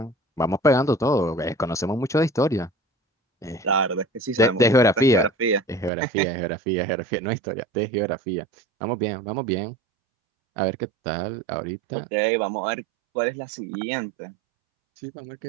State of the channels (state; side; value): drops out; left; at 5.9 s